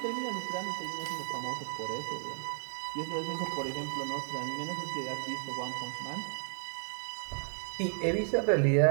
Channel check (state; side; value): silent; left; digital silence